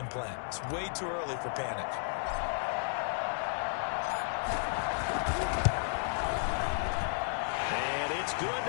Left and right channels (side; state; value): right; silent; 56 dB below the other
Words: plan. It's way too early for panic. Good